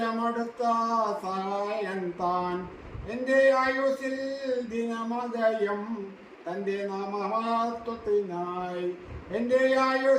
സഹായകൻ താൻ. എൻ്റെ ആയുസ്സിൽ ദിനമകയം തൻ്റെ നാമമഹത്വത്തിനായി. എൻ്റെ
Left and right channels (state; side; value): identical; both; correlation 1.00